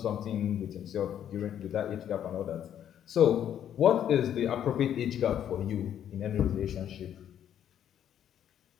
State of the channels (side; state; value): right; quieter; 10.0 dB